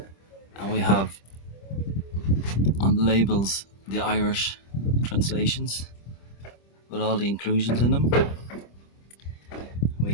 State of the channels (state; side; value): late; right; 25 ms